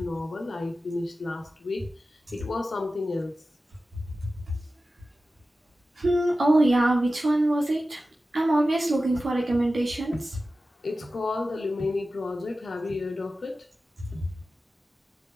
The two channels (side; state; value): both; normal; correlation 0.94